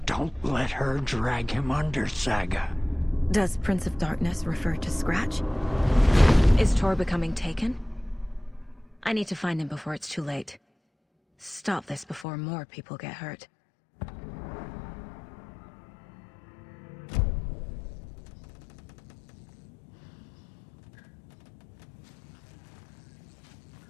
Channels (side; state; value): right; drops out; at 12.2 s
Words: Don't let her drag him under, Saga. Does Prince of Darkness refer to Scratch? Is Tor becoming taken? I need to find him before it's too late. Stop this before more people get hurt.